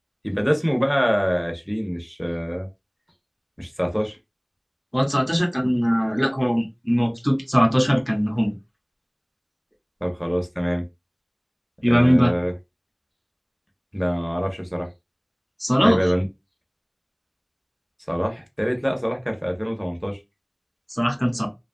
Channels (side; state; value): both; identical; correlation 1.00